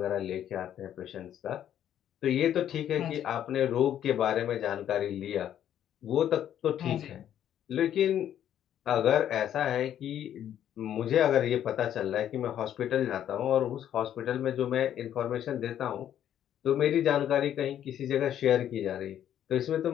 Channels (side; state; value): right; quieter; 10.5 dB